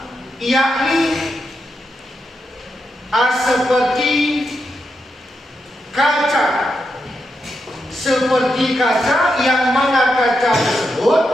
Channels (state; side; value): normal; both; correlation 0.85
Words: yakni seperti kaca. Seperti kaca, yang mana kaca tersebut